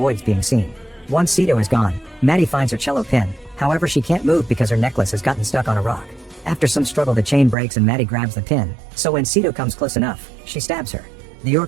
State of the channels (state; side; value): drops out; left; at 7.6 s